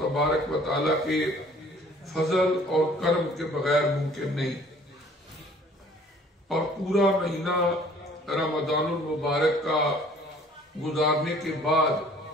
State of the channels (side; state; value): both; normal; correlation 0.54